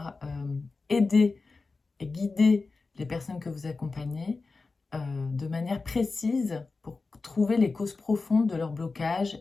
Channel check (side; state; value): right; quieter; 3.9 dB